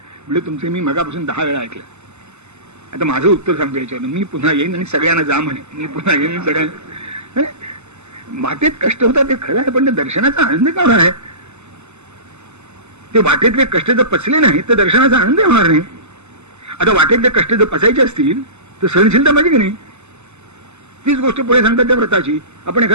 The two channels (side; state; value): left; late; 0.82 ms